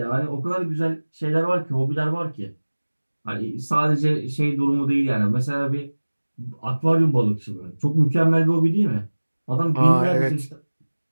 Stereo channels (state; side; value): inverted; both; correlation -1.00